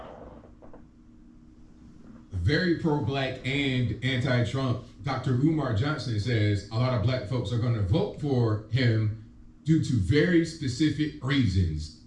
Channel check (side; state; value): both; identical; correlation 1.00